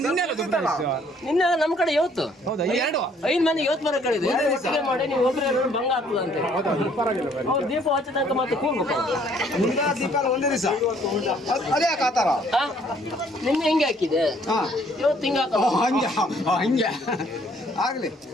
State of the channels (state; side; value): normal; both; correlation 0.62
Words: ನಿನ್ನೆ ನಮ್ಮ ಕಡೆ ಇವತ್ತು ಹೌದಾ? 5 ಮಂದಿ ಇವತ್ತು ಬರೋ ಕಡೆ ಇದೆ. ಒಟ್ಟಿಗೆ ಮಾಡಿ ನೀವು ಒಬ್ಬರೇ ಎರಡು ಭಂಗ ಆಗ್ತದೆ ಅಂತ. ಅವ್ರು ದೀಪ ಹಚ್ಚ ತನಕ ಮತ್ತೆ ಕೂರ್ಬೇಕು. ದೀಪ ಒಂದೇ ದಿವಸ ಅದೇ ಹಾಕಾತಾರ. ನಿನ್ನೆ ಹಿಂಗೆ ಹಾಕಿದೆ, ಇವತ್ತು ಹಿಂಗೆ ಹಾಕ. ಹಂಗೆ ಹಂಗೆ ಆಗ್ಲಿ.